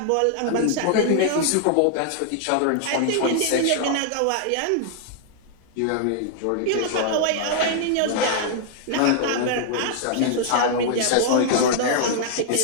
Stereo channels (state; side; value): different; both; correlation -0.01